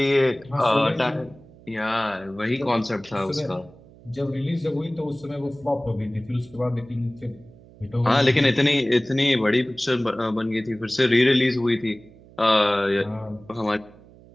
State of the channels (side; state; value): right; noise; hum, 23 dB below the sound